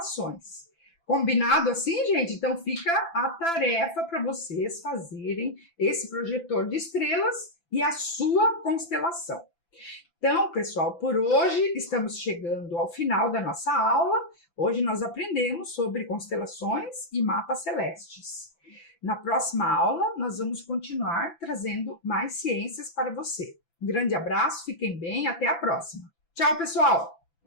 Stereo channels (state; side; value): late; right; 5.9 ms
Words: Combinado assim, gente? Então fica a tarefa para vocês fazerem esse projetor de estrelas e a sua constelação. Então, pessoal, por hoje estamos chegando ao final da nossa aula. Hoje nós aprendemos sobre constelações e mapas celestes. Na próxima aula, nós vamos continuar trazendo mais ciências para você. Um grande abraço, fiquem bem, até a próxima. Tchau, pessoal!